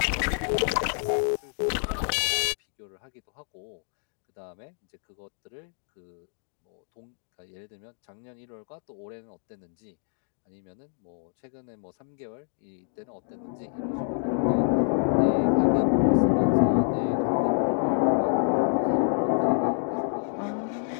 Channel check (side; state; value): right; silent; digital silence